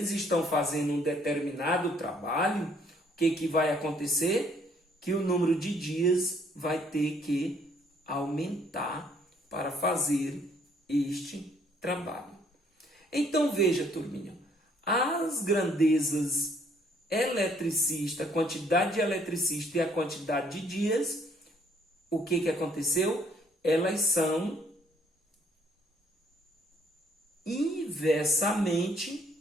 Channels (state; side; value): normal; both; correlation 0.64